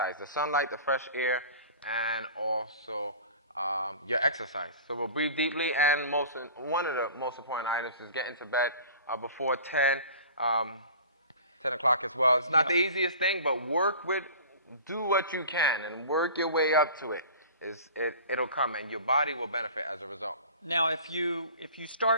the sunlight, the fresh air, and also your exercise. So we'll breathe deeply, and one of the most important items is get into bed before 10 o'clock as well. It's not the easiest thing, but do what you can and work your way up to it. It'll come, and your body will benefit as a result. Now, if you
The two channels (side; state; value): both; inverted; correlation -0.41